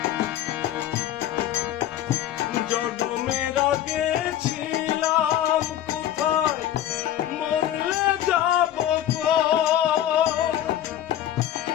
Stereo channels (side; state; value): right; quieter; 11.9 dB